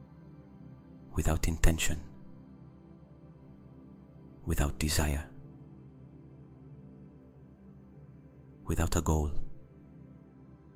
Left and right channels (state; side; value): identical; both; correlation 1.00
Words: without intention, without desire, without a goal,